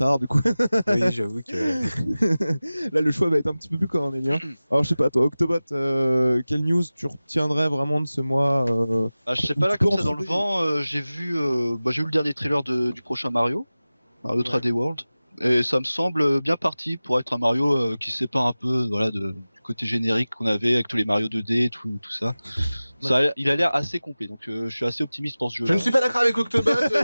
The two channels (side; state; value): both; inverted; correlation -0.97